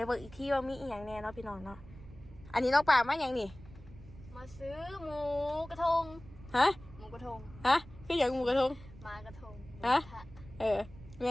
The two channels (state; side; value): noise; right; rumble, 18 dB below the sound